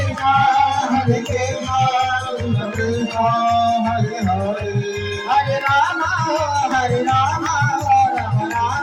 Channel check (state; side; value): identical; both; correlation 1.00